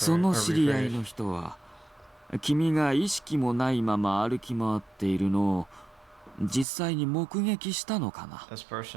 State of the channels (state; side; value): drops out; left; at 6.7 s